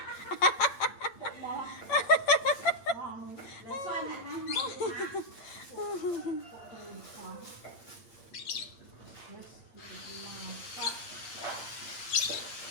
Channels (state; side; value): late; right; 8.7 ms